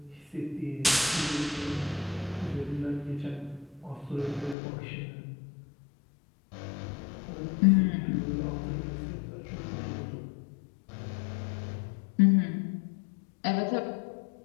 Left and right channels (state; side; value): drops out; right; at 4.5 s